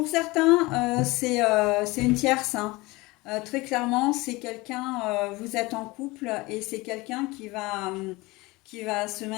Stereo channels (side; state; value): right; quieter; 22.4 dB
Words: certains, c'est une tierce, hein. Très clairement, c'est quelqu'un, vous êtes en couple et c'est quelqu'un qui va se